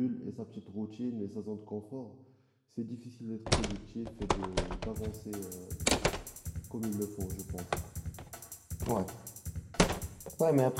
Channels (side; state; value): both; identical; correlation 1.00